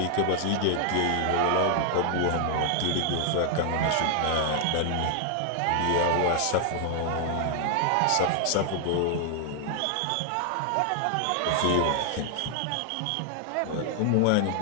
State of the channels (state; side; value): different; both; correlation 0.00